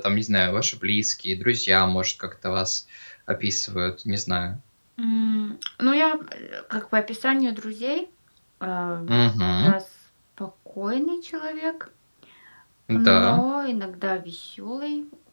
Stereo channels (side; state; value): both; inverted; correlation -1.00